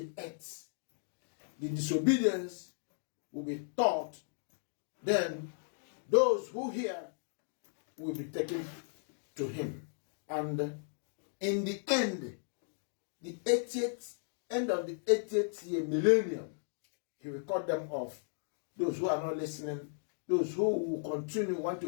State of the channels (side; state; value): right; silent; digital silence